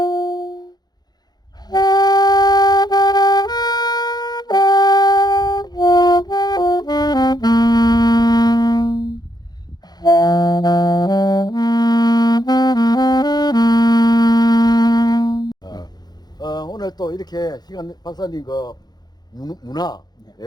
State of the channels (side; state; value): right; late; 0.20 ms